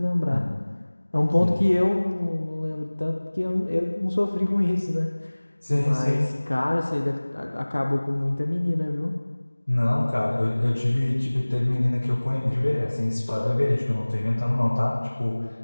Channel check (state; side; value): inverted; both; correlation -1.00